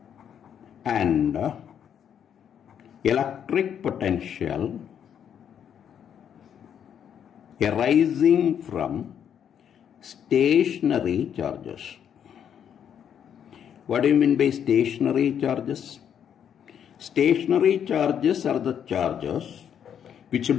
and electric potential arising from stationary charges. What do you mean by stationary charges? Stationary charges are the charges which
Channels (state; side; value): quieter; right; 8.7 dB